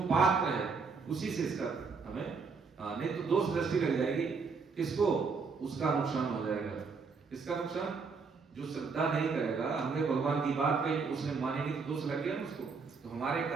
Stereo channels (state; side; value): quieter; left; 4.9 dB